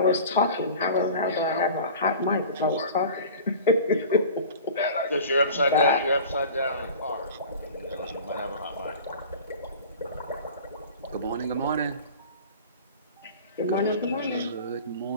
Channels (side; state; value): both; inverted; correlation -0.39